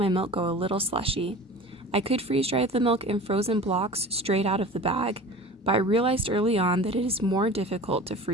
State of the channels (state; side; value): normal; both; correlation 0.38